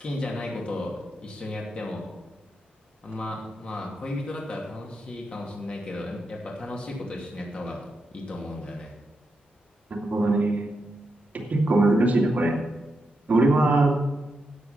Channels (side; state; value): both; normal; correlation 0.85